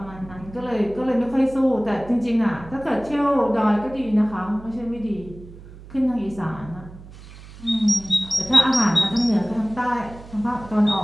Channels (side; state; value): right; noise; hum, 18 dB below the sound